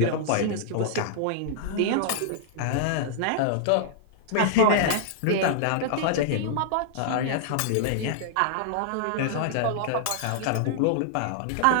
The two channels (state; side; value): different; both; correlation -0.01